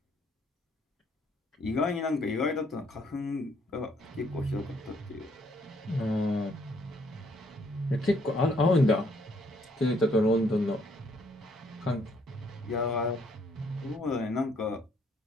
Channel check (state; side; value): normal; both; correlation 0.67